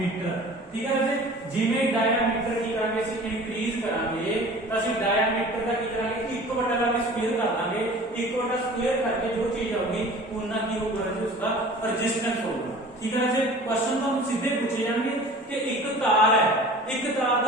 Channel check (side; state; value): both; normal; correlation 0.43